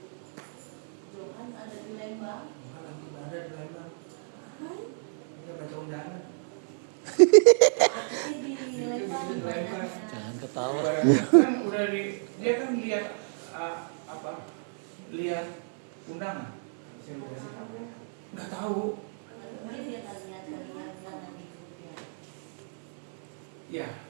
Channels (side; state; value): left; silent; digital silence